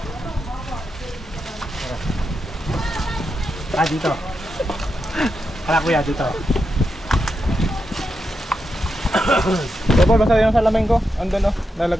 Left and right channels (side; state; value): both; normal; correlation 0.86